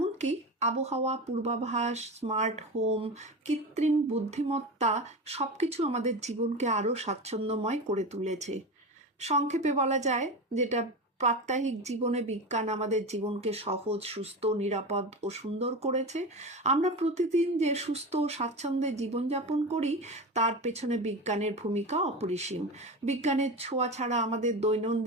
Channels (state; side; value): normal; both; correlation 0.24